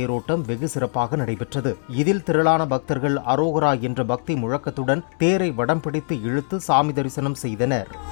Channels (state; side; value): silent; right; digital silence